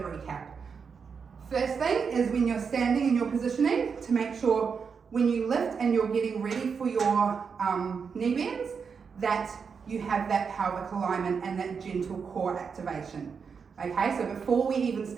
First thing is when you're standing in your positioning, to make sure when you lift and you're getting ready for your knee bends, that you have that pelvic alignment and that gentle core activation. Okay, so before we even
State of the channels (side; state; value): left; quieter; 5.9 dB